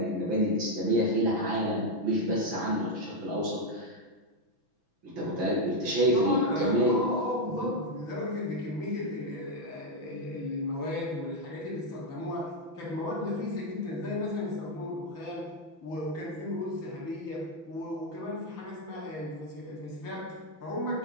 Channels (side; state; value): left; late; 6.0 ms